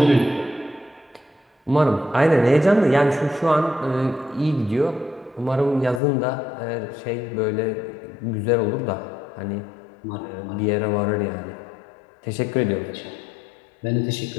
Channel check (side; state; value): right; drops out; at 6.0 s